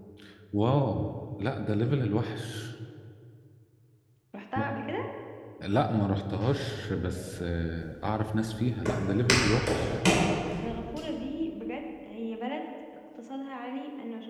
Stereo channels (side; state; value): both; identical; correlation 1.00